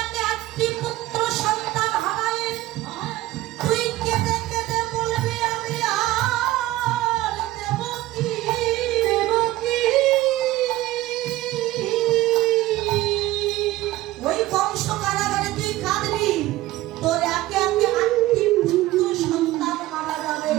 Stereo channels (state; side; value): quieter; left; 16.6 dB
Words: একে 8টি পুত্র সন্তান হারায় তুই কেঁদে কেঁদে বলবি, আমি আর দেবকী। ওই বংশ কারাগারে তুই কাঁদবি, তোর একে একে 8টি পুত্র সন্তান মারা যাবে,